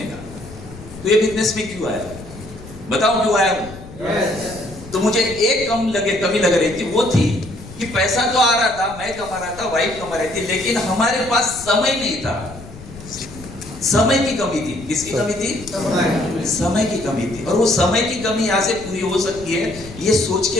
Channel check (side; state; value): left; noise; rumble, 16 dB below the sound